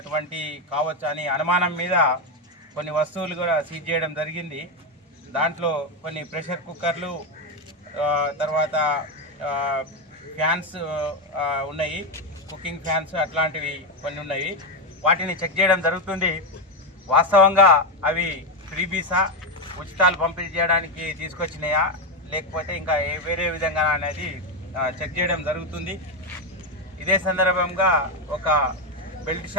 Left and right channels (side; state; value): both; normal; correlation 0.08